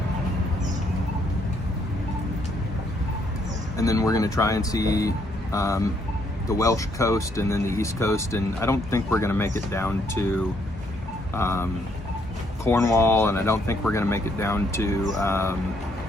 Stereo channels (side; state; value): both; normal; correlation 0.71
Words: And then we're going to try and see the Welsh coast and then the East Coast, and I don't think we're going to make it down to Cornwall, and I don't think we're going to make it down to